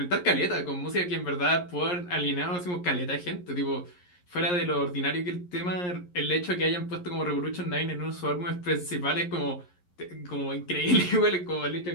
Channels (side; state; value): right; late; 11 ms